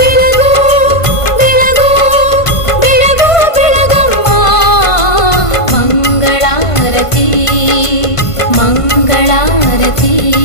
ಬೆಳಗು ಬೆಳಗು ಬೆಳಗಮ್ಮ ಮಂಗಳಾರತಿ ಮಂಗಳಾರತಿ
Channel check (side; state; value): right; late; 1.5 ms